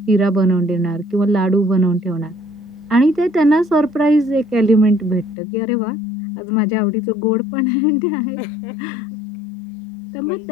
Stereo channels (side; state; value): right; drops out; at 5.4 s